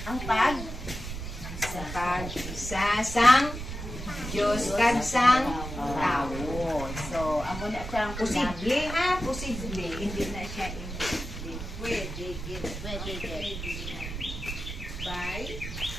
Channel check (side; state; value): right; noise; rumble, 8 dB below the sound